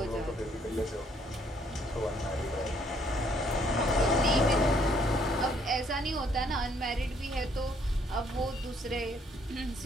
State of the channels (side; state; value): both; normal; correlation 0.66